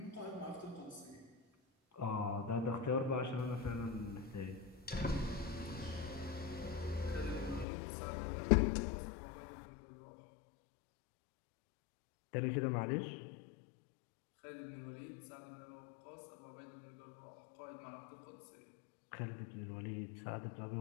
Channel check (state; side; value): drops out; right; at 7.7 s